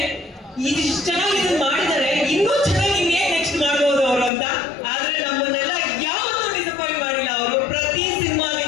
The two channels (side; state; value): right; drops out; at 4.3 s